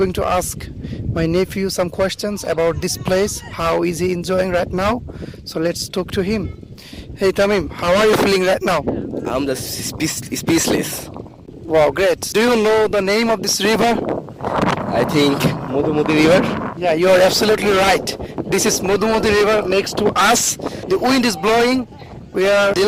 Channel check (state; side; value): identical; both; correlation 1.00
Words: to ask my nephew some questions about this place. How is he enjoying right now? So let's talk to him. Hey Tamim, how are you feeling right now? I'm just speechless. Wow, great. Do you know the name of this river? I think Mudumudi River. Yeah, you are absolutely right. This is Modumodi River next to us. The wind is blowing. We are